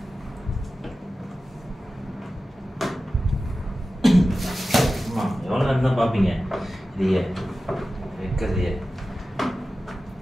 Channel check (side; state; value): both; normal; correlation 0.94